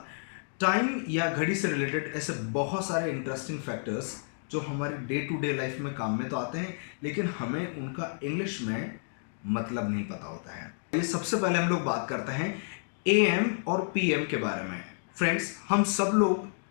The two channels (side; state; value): right; silent; digital silence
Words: टाइम या घड़ी से रिलेटेड ऐसे बहुत सारे इंटरेस्टिंग फैक्टर्स जो हमारी डे टू डे लाइफ में काम में तो आते हैं लेकिन हमें उनका इंग्लिश में मतलब नहीं पता होता है। ये सबसे पहले हम लोग बात करते हैं AM और PM के बारे में। फ्रेंड्स, हम सब